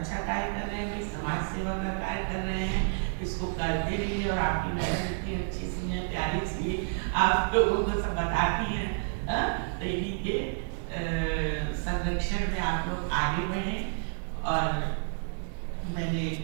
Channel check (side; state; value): left; silent; digital silence